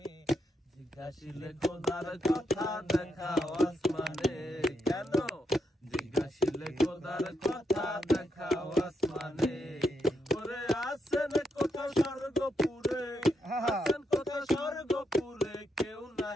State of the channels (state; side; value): normal; both; correlation 0.81